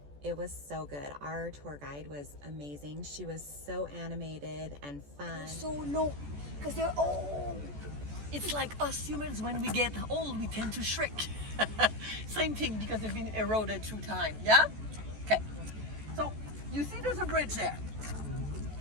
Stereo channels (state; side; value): late; left; 14 ms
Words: It was so good. Our tour guide was amazing. She was so animated and fun. So low, because they're old. It's like us humans, when we get old, we tend to shrink. Same thing, because they've been eroded through time, yeah? Okay, so you see there's a bridge there.